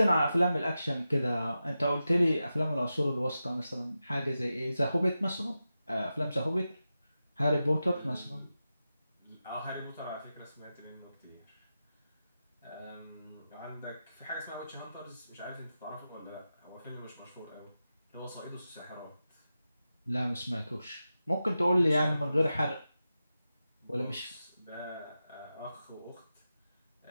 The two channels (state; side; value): inverted; both; correlation -0.91